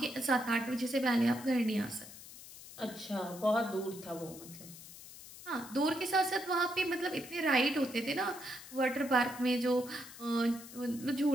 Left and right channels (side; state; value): left; noise; hiss, 16 dB below the sound